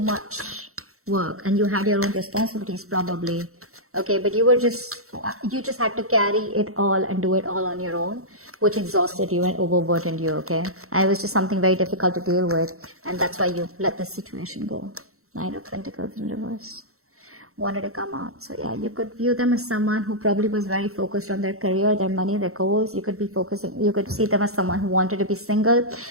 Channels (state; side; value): late; left; 0.63 ms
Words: much work, and you had your own responsibilities probably. Okay, but you just had to carry it all and do it all on your own, which exhausted you and overburdened you, okay? And it was just something very difficult to deal with, and that's why you let this situation go. Nine of Pentacles in reverse. Wanted to come out. So yeah, you could view them as someone who probably was very focused on their career, their money, their goals. You could see them as someone who wanted to be single.